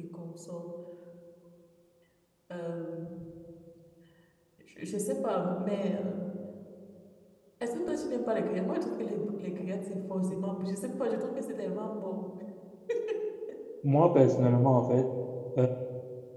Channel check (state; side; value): identical; both; correlation 1.00